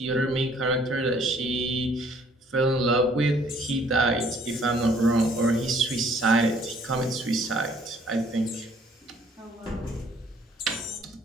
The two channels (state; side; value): normal; both; correlation 0.60